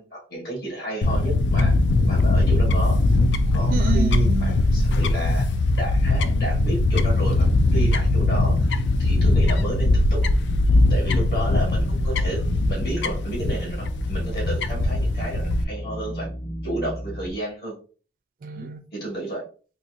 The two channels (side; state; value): both; normal; correlation 0.81